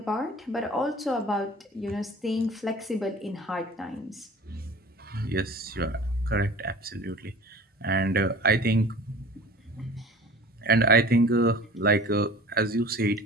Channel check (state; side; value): normal; both; correlation 0.43